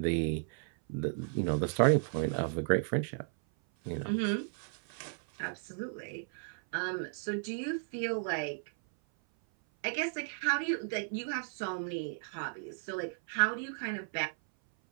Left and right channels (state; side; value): silent; left; 55 dB below the other